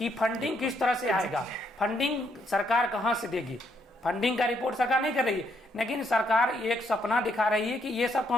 फंडिंग किस तरह से आएगा, फंडिंग सरकार कहाँ से देगी, फंडिंग का रिपोर्ट सरकार नहीं कर रही है, लेकिन सरकार एक सपना दिखा रही है कि ये सब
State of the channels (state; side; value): normal; both; correlation 0.74